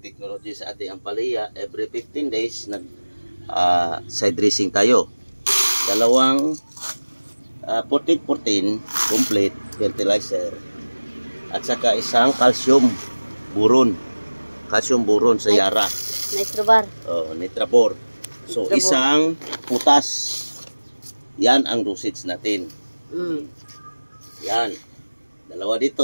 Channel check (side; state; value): both; inverted; correlation -1.00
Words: technology sa ating ampalaya. Every 15 days, side dressing tayo. Dalawang 14-14 complete fertilizer. At saka isang calcium buron. Calcium buron sa Yara. Nitrobar. Oh, Nitrabor. So, isang putas. Yan ang dosage natin. Yan. Dalawa